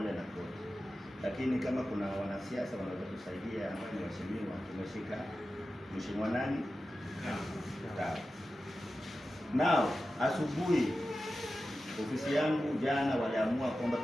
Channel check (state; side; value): normal; both; correlation 0.93